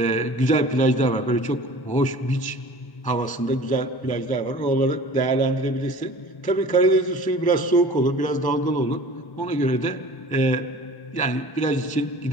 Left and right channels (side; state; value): right; late; 1.1 ms